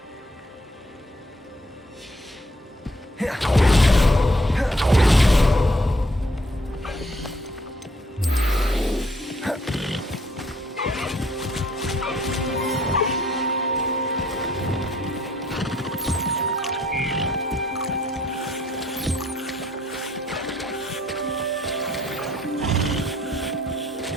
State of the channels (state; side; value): normal; both; correlation 0.66